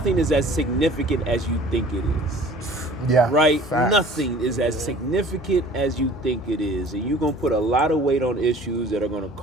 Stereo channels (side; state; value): both; normal; correlation 0.48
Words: is as significant as you think it is. Yeah. Right? Facts. Nothing is as significant as you think it is. And you're going to put a lot of weight on issues that are going to